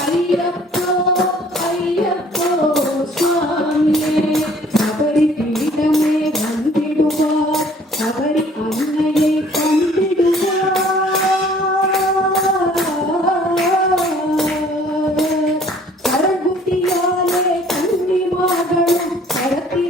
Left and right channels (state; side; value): normal; both; correlation 0.56